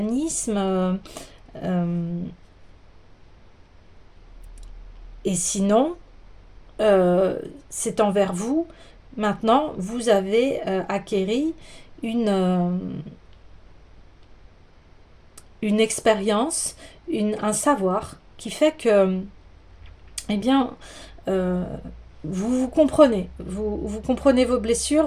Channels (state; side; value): identical; both; correlation 1.00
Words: Et sinon, c'est envers vous. Maintenant, vous avez acquéri une expérience, un savoir qui fait que, eh bien, vous vous comprenez. Vous comprenez vos